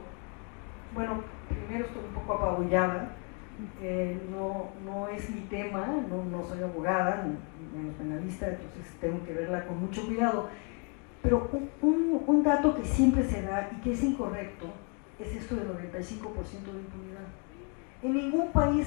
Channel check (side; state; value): right; quieter; 35.7 dB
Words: bueno, primero estoy un poco apabullada. No es mi tema, no soy abogada, menos penalista, entonces tengo que verla con mucho cuidado. Pero un dato que siempre se da y que es incorrecto es esto del 95% de impunidad. En ningún